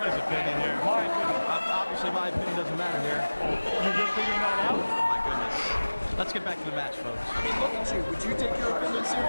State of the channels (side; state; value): both; inverted; correlation -1.00